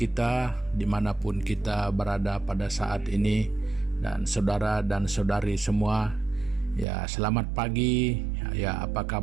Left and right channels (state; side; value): drops out; left; at 6.9 s